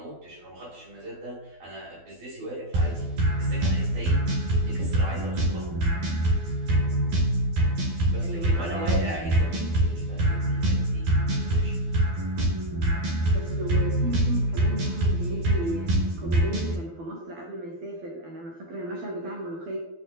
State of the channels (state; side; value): late; left; 12 ms